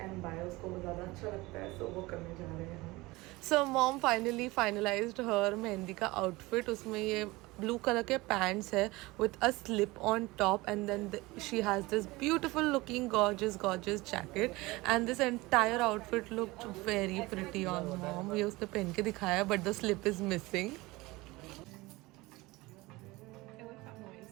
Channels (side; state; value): left; quieter; 21.5 dB